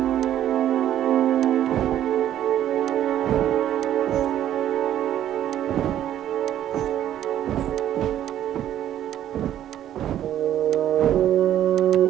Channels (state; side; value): quieter; left; 11.5 dB